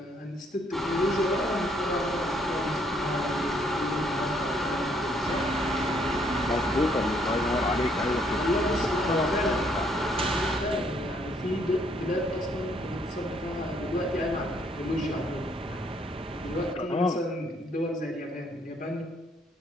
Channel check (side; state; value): both; normal; correlation 0.68